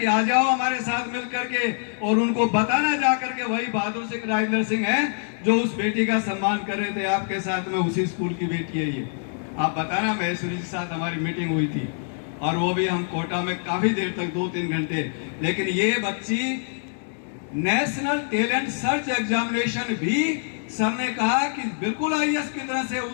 आ जाओ हमारे साथ मिल करके, और उनको बताना जा करके वही बहादुर सिंह राजेंद्र सिंह है जो उस बेटी का सम्मान कर रहे थे आपके साथ में, उसी स्कूल की बेटी है ये। आप बताना, महेश्वरी जी के साथ हमारी मीटिंग हुई थी और वो भी हम कोटा में काफी देर तक 2-3 घंटे। लेकिन ये बच्ची नेशनल टैलेंट सर्च एग्जामिनेशन भी सर ने कहा कि बिल्कुल आईएएस की तरह से,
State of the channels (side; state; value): right; silent; digital silence